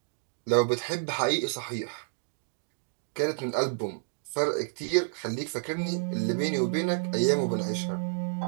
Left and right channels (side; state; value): left; silent; digital silence